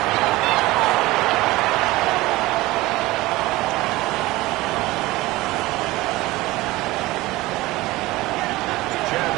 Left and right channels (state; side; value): quieter; left; 19.3 dB